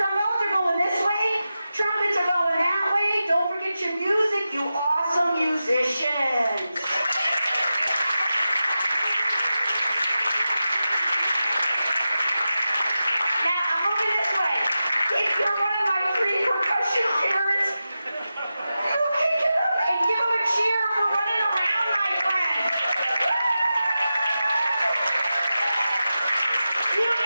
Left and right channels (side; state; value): both; inverted; correlation -0.92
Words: are going this way, trumpets are going that way. Don't forget your music, you awesome musicians.